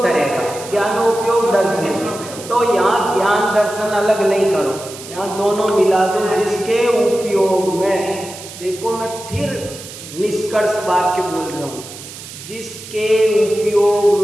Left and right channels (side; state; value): right; noise; hiss, 14 dB below the sound